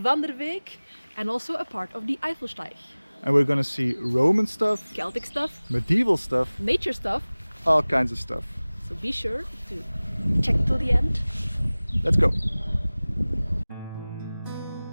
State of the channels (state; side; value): inverted; both; correlation -0.99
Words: and also a part of the Eifelsteig. And we're gonna see Roman stuff, Celtic stuff, medieval stuff, nature stuff, all kinds of stuff. so be sure to check till the end. Let's go.